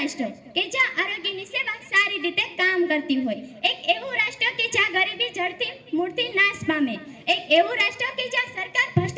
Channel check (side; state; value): both; identical; correlation 1.00